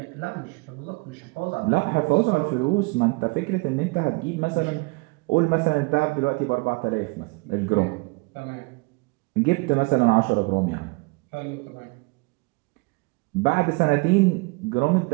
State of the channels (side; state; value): left; quieter; 27.7 dB